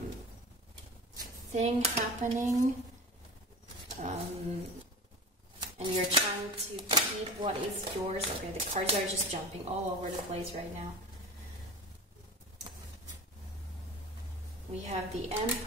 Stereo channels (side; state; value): both; normal; correlation 0.33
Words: thing happening, and you're trying to keep what is yours. Okay, the cards are just jumping all over the place right now. We have the